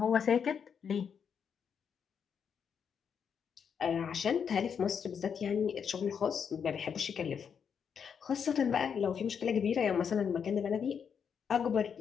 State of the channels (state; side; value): quieter; right; 7.1 dB